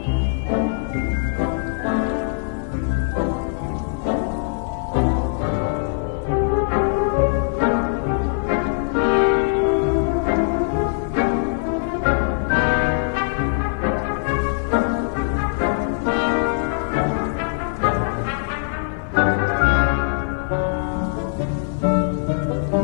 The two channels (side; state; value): right; silent; digital silence